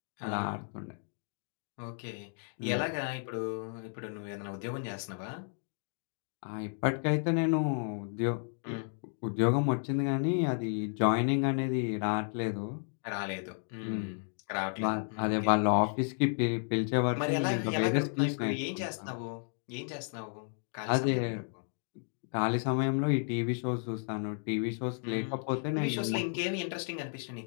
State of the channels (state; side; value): silent; right; 56 dB below the other